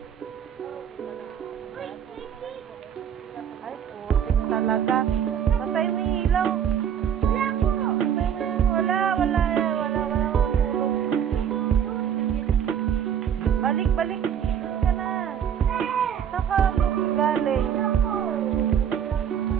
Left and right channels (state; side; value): quieter; left; 8.7 dB